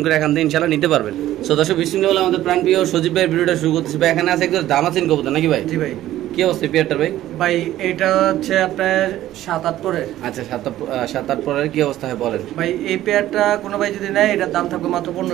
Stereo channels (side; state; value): left; quieter; 13.8 dB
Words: করে এখান থেকে ইনশাআল্লাহ নিতে পারবেন। সো দর্শক বিসমিল্লাহ আমাদের প্রাণপ্রিয় সজীব ভাইয়ের ভিডিওটা শুরু করতেছি। ভাই এখানে আছে একদম দামাচিন কবুতর নাকি ভাই? জি ভাই। কি অবস্থা পেয়ারটার ভাই? ভাই এটা হচ্ছে আপনার 7-8 পরের। আচ্ছা 7-8 পরের কি অবস্থা হয় বলেন ভাই এই পেয়ারটা কোনো ভাই যদি নেয় এটার দাম থাকবে মাত্র